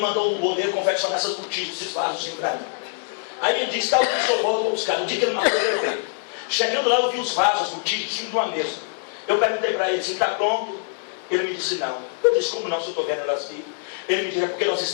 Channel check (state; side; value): silent; right; 63 dB below the other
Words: um boleiro confeccionar essas botijas, esses vasos para mim. Aí ele disse, tá, o senhor volta para buscar. No dia que ele marcou, eu veio. Chegando lá, eu vi os vasos, as botijas, em cima de uma mesa. Eu perguntei para ele, está pronto? Ele me disse, não. Eu disse, como não, se eu estou vendo elas aqui? Ele me disse, é porque nós